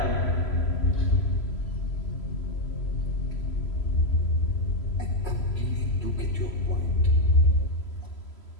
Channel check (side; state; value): right; late; 3.0 ms